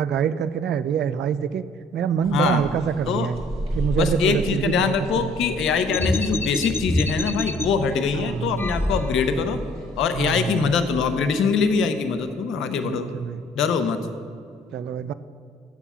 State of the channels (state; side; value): normal; both; correlation 0.57